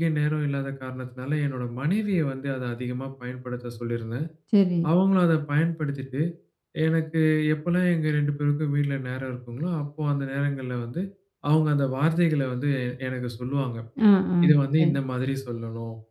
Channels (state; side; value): identical; both; correlation 1.00